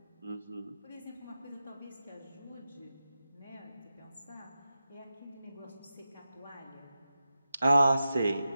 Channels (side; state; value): both; inverted; correlation -0.91